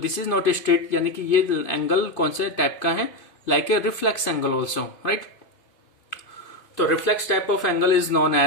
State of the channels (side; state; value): right; late; 2.5 ms